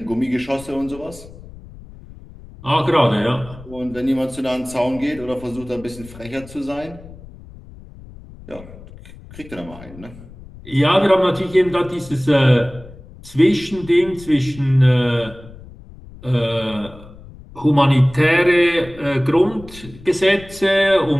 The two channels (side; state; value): left; noise; rumble, 19 dB below the sound